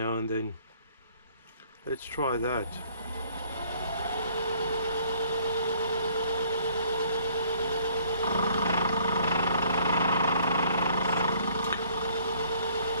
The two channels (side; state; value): both; inverted; correlation -0.59